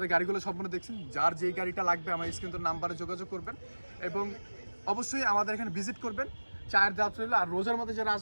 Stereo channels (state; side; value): inverted; both; correlation -1.00